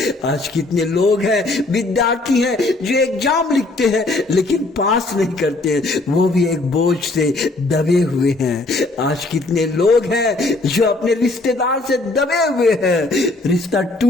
आज कितने लोग हैं विद्यार्थी हैं जो एग्जाम लिखते हैं लेकिन पास नहीं करते हैं, वो भी एक बोझ से दबे हुए हैं। आज कितने लोग हैं जो अपने रिश्तेदार से दबे हुए हैं, रिश्ता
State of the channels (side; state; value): right; quieter; 3.0 dB